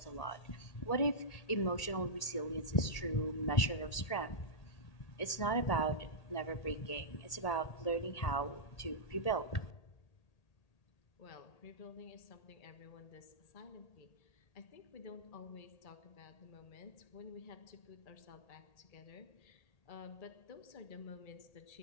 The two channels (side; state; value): right; late; 1.8 ms